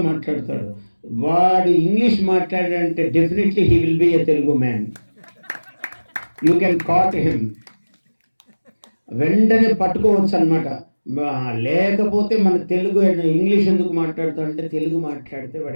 మాట్లాడతాడు. వాడు ఇంగ్లీష్ మాట్లాడాడంటే definitely he will be a Telugu man. You can caught him, వెంటనే పట్టుకోవచ్చు అనమాట. లేకపోతే మన తెలుగు ఇంగ్లీష్ ఎందుకు మాట్లాడతాడంటే తెలుగు మాట్లాడితే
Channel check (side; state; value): both; inverted; correlation -1.00